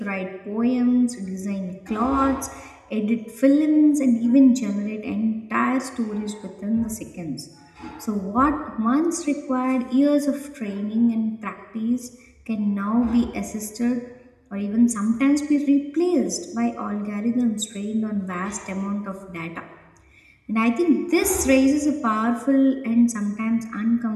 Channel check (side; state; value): both; identical; correlation 1.00